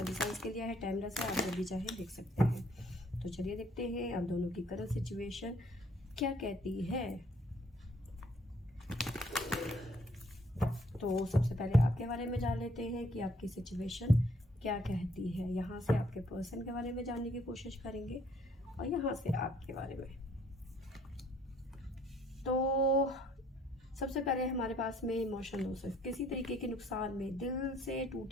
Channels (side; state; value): both; normal; correlation 0.64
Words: साइंस के लिए है, टाइमलेस है, आप जब भी चाहे देख सकते हैं। तो चलिए देखते हैं आप दोनों की करंट सिचुएशन क्या कहती है। तो सबसे पहले आपके बारे में जान लेते हैं कि आपकी सिचुएशन क्या कहती है। यहाँ से आपके पर्सन के बारे में जानने की कोशिश करेंगे और यहाँ से आपके बारे में। तो सबसे पहले हमारे पास में इमोशन लॉसेस, किसी तरीके के नुकसान में, दिल से